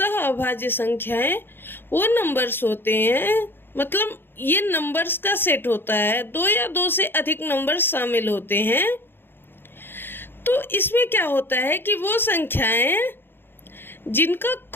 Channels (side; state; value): right; late; 0.10 ms